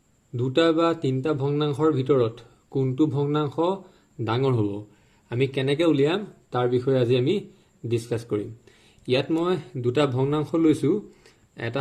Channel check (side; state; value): both; identical; correlation 1.00